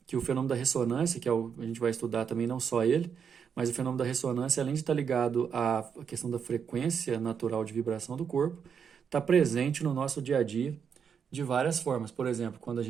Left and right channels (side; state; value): left; quieter; 7.0 dB